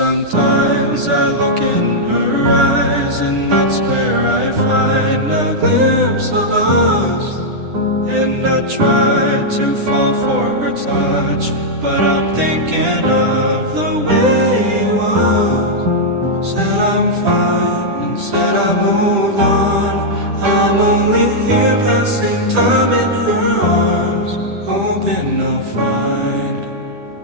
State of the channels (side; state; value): left; late; 10 ms